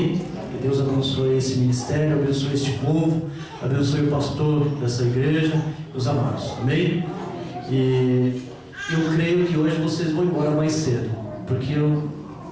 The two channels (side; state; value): both; identical; correlation 1.00